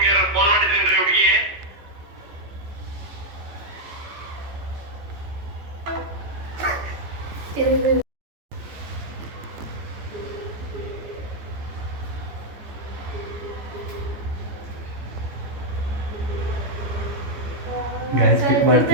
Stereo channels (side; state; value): left; late; 14 ms